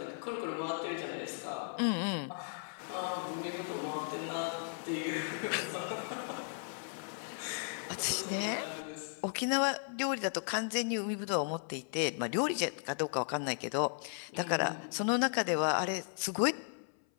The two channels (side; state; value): right; silent; 54 dB below the other